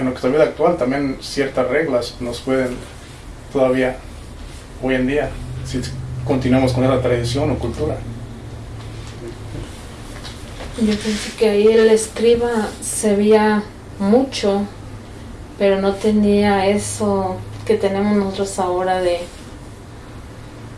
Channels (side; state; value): both; identical; correlation 1.00